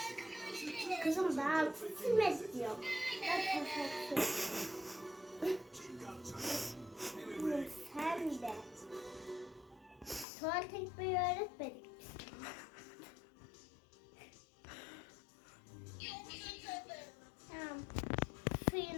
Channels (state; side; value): drops out; right; at 10.2 s